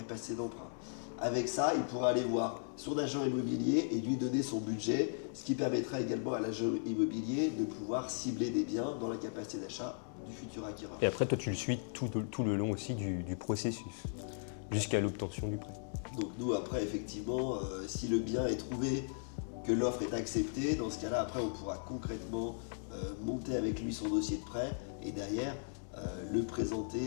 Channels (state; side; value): silent; right; digital silence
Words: d'emprunt. Avec ça, il pourra aller voir son agent immobilier et lui donner son budget, ce qui permettra également à l'agent immobilier de pouvoir cibler des biens dans la capacité d'achat du futur acquéreur. Et après, toi, tu le suis tout le long aussi du processus, jusqu'à l'obtention du prêt. Donc nous, après, effectivement, si le bien est trouvé, que l'offre est acceptée, dans ce cas-là, après, on pourra concrètement monter avec lui son dossier de prêt et derrière, le